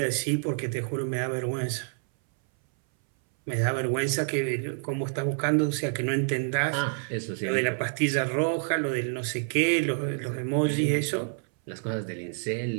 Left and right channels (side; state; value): left; silent; 59 dB below the other